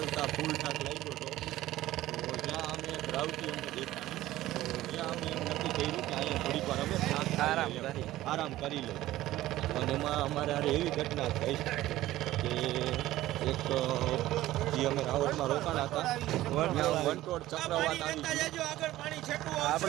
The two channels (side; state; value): left; quieter; 15.4 dB